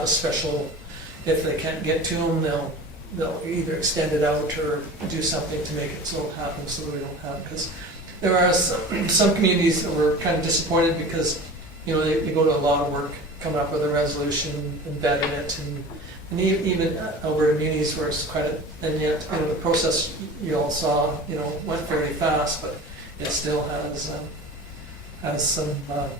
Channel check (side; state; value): both; normal; correlation 0.37